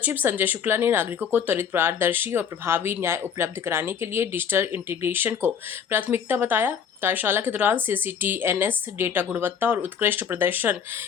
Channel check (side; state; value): right; quieter; 7.4 dB